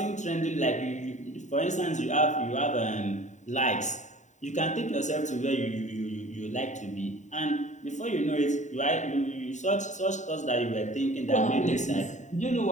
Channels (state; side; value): late; right; 0.35 ms